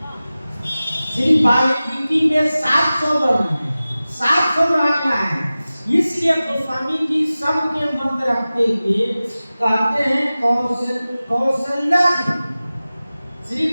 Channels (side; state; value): both; inverted; correlation -0.96